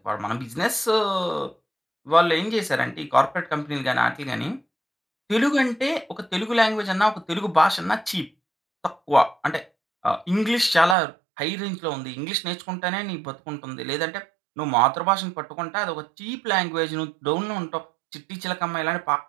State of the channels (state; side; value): drops out; left; at 11.0 s